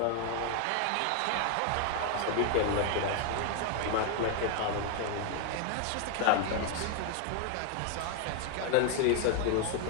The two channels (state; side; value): different; both; correlation 0.01